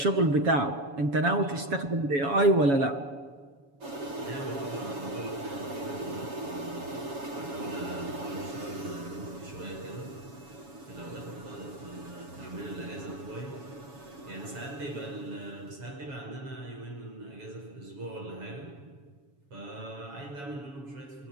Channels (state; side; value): late; left; 7.2 ms